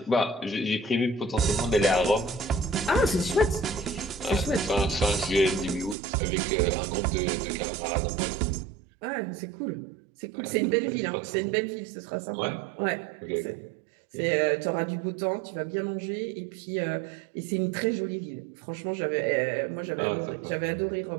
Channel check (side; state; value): left; drops out; at 6.0 s